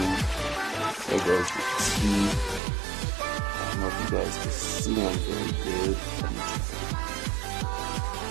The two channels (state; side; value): drops out; left; at 2.6 s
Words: There goes the T. I don't know if you guys can see them very good.